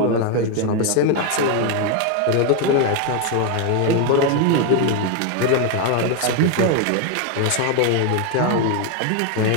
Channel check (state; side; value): different; both; correlation 0.01